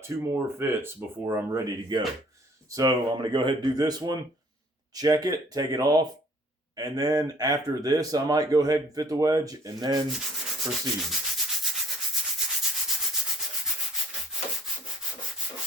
2 more fits before I'm ready to go. So I'm going to go ahead and do this one, check it, take it off, and then after this, I might go ahead and fit the wedge and then proceed.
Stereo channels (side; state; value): both; normal; correlation 0.57